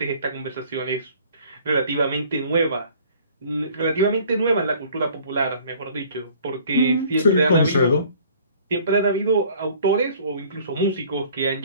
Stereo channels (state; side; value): inverted; both; correlation -0.53